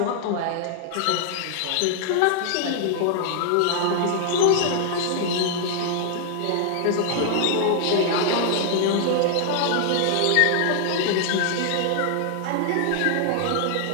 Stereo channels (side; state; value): both; different; correlation 0.00